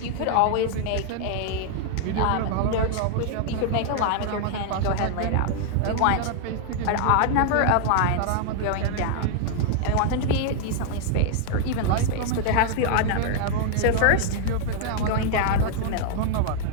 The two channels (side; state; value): both; different; correlation 0.00